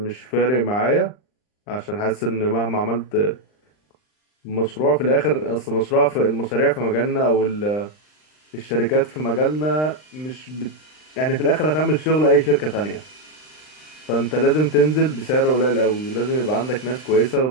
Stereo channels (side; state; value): right; late; 39 ms